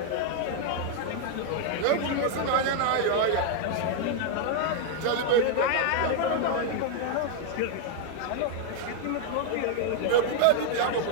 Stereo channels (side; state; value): both; different; correlation 0.00